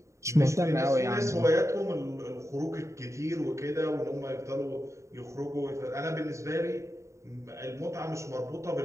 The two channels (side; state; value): left; late; 0.14 ms